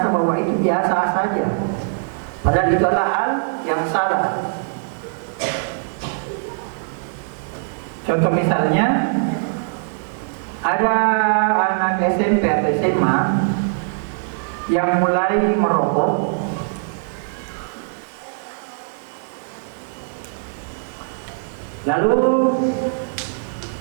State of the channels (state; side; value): silent; left; digital silence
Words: bahwa itu biasa saja, padahal itu adalah hal yang salah. Contoh misalnya, ada anak SMP atau SMA yang mulai merokok, lalu